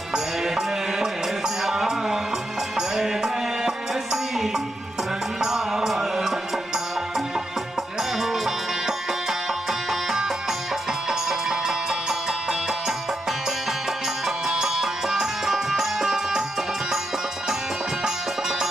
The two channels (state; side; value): normal; both; correlation 0.83